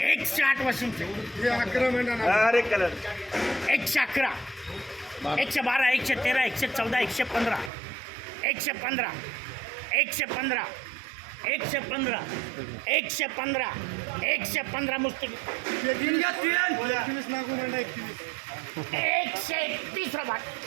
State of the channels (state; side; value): drops out; left; at 7.7 s